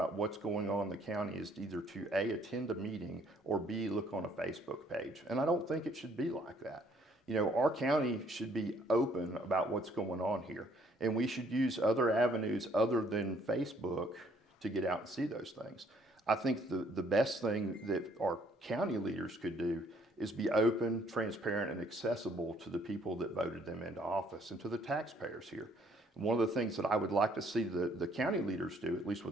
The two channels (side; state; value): both; normal; correlation 0.64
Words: what's going on in the county is either to A, attend a meeting, or B, look on a Facebook page. And I don't think it should be like that. You know, our county should be open about what's going on here. And we should use other avenues other than Facebook to get out and see those things. I think the best thing that our county leaders could do is be open, transparent, and accessible to the people that voted them into office and to the taxpayers here. And one of the things that I would like to see the county leaders do, at least with